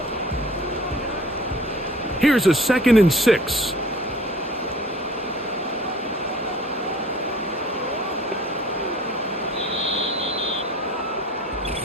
Here's a 2nd and 6.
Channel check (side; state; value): both; normal; correlation 0.48